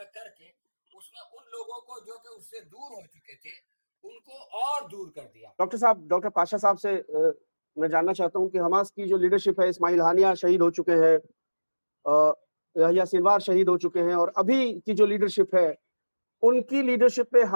करके उसने उन लोगों को जो कि उससे दूर हो चुके थे उनको और दूर कर दिया। डॉक्टर साहब, डॉक्टर पाशा साहब से मैं जानना चाहता हूं कि हमास की जो लीडरशिप है, इस्माइल हानिया शहीद हो चुके हैं, यहया सिनवार शहीद हो चुके हैं, और अभी की जो लीडरशिप है उनकी लीडरशिप पे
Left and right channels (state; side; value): inverted; both; correlation -1.00